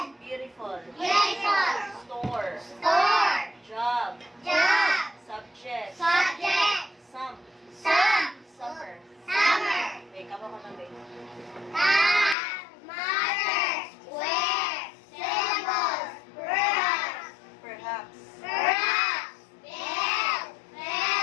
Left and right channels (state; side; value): drops out; right; at 12.4 s